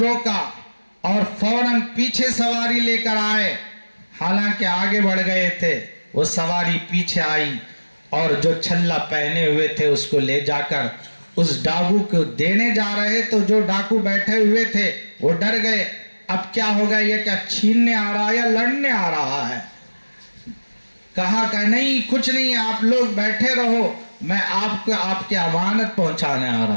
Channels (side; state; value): both; inverted; correlation -1.00